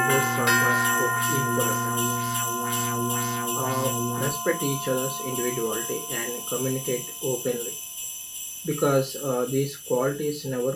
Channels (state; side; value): identical; both; correlation 1.00